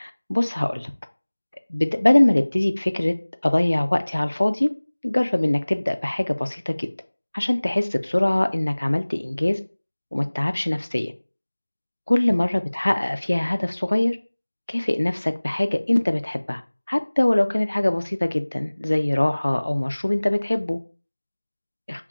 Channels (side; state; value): both; inverted; correlation -1.00